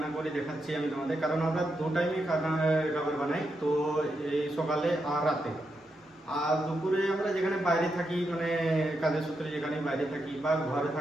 করে দেখাচ্ছি আমি তোমাদের, কারণ আমরা দু টাইমে খাবার বানাই, তো এই সকালে আর রাতে। আর দুপুরে আমরা যেখানে বাইরে থাকি, মানে কাজের সূত্রে যেখানে বাইরে থাকি, বা ঘরে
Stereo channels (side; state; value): both; normal; correlation 0.84